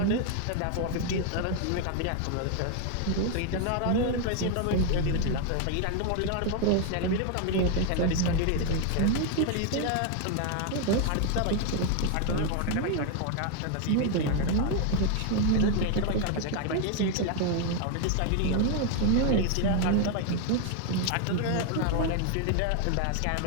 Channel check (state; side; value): different; both; correlation 0.01